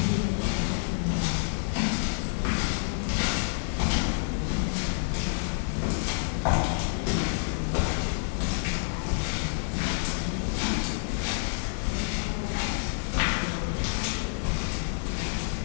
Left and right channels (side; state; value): right; silent; digital silence